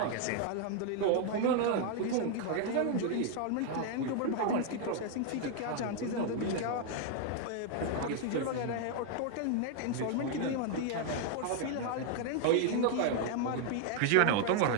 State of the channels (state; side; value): different; both; correlation 0.00